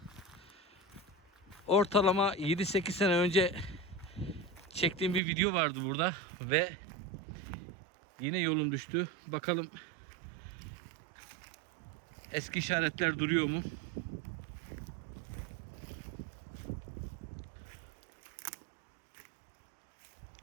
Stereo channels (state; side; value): drops out; left; at 5.2 s